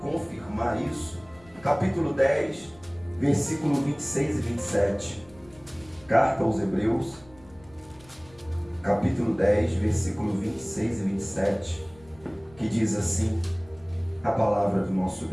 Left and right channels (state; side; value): noise; left; rumble, 26 dB below the sound